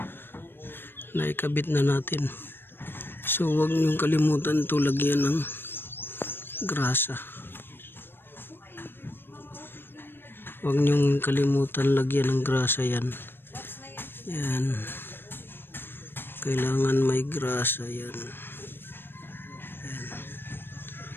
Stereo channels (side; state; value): right; late; 0.099 ms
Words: naikabit na natin. So huwag niyong kalimutan to lagyan ng grasa. Huwag niyong kalimutan lagyan ng grasa yan. Yan, kailangan may grasa yan. Yan,